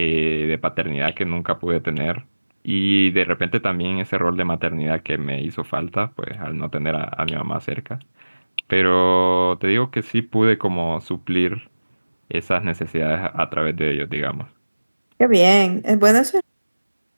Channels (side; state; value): both; inverted; correlation -1.00